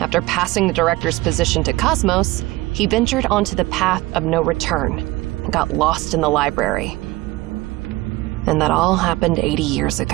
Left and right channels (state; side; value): quieter; left; 19.9 dB